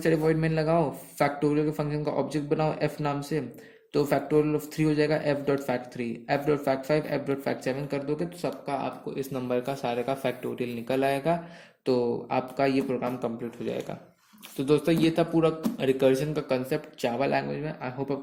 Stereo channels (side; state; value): both; identical; correlation 1.00